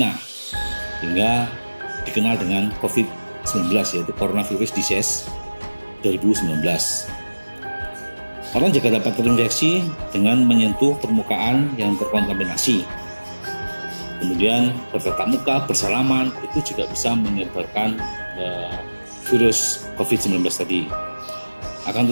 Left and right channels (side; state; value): both; inverted; correlation -1.00